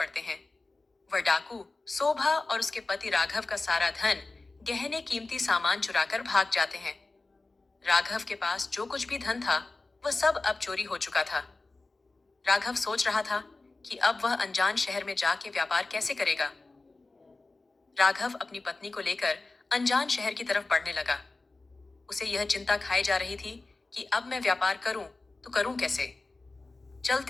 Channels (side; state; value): right; quieter; 3.3 dB